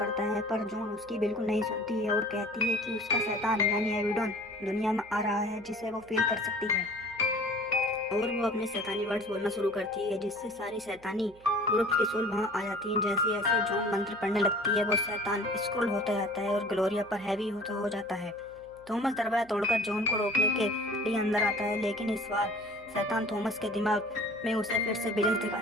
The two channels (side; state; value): right; noise; hum, 26 dB below the sound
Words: है, पर जॉन उसकी बिल्कुल नहीं सुनती है और कहती है कि उसका शैतान यानी एबिडोन दुनिया में आ रहा है, जिसे वो फील कर सकती है। और वो अपने शैतानी वर्ड्स बोलना शुरू करती है, जिससे सारी शैतानी ग्रुप्स की सोल वहाँ आ जाती हैं। जैसे जैसे जॉन मंत्र पढ़ने लगती है वो शैतान स्क्रॉल होता जाता है और ग्लोरिया पर हैवी होता हो जाता है। थॉमस दरवाजा तोड़कर जॉन को रोकने के लिए अंदर आता है, लेकिन इस बार शैतान थॉमस के दिमाग में उसे फिर से विजन